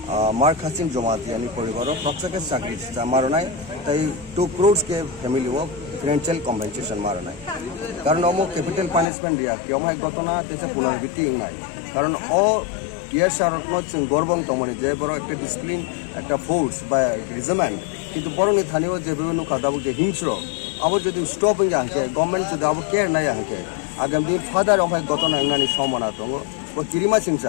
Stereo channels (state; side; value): drops out; right; at 9.1 s